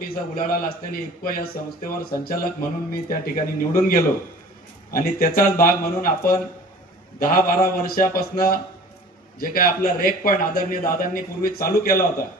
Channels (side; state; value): both; normal; correlation 0.45